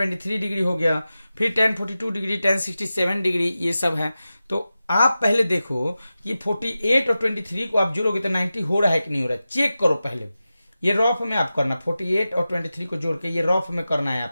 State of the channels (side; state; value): both; inverted; correlation -0.93